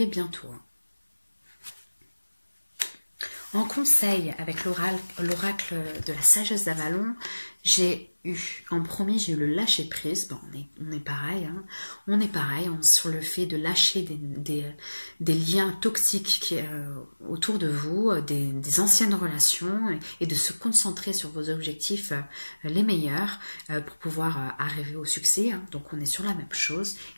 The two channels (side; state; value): both; inverted; correlation -1.00